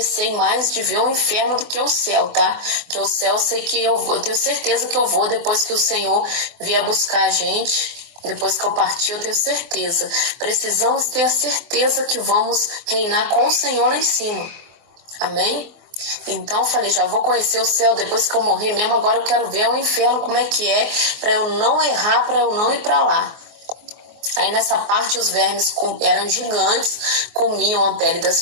mais de ver o inferno do que o céu, tá? Que o céu eu sei que eu vou, eu tenho certeza que eu vou depois que o Senhor vier buscar a gente. Depois que eu partir, eu tenho certeza. Precisamos ter a certeza que vamos reinar com o Senhor lá em cima. Amém? Então eu falei, já vou conhecer o céu depois que eu morrer mesmo, agora eu quero ver o inferno como é que é, para eu não errar, para eu não ir para lá. Aí nessa parte os vermes eram gigantes, comiam a pele das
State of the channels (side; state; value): left; late; 24 ms